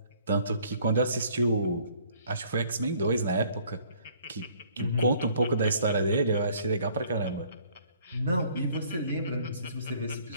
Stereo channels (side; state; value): both; inverted; correlation -0.58